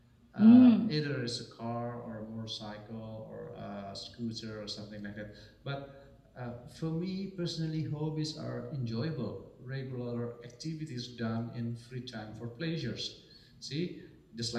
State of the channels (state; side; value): identical; both; correlation 1.00